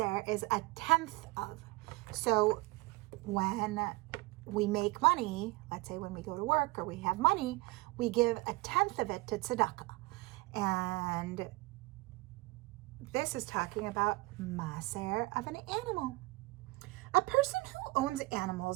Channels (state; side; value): quieter; left; 22.7 dB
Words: is a tenth of. So when we make money, let's say when we go to work or we have money, we give a tenth of it to tzedakah. And this is talking about maaser of an animal. A person who owns